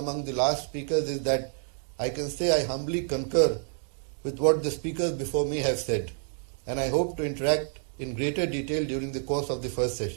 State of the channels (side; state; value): left; silent; 59 dB below the other